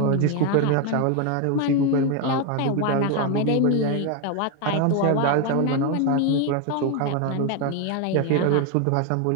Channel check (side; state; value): both; different; correlation 0.01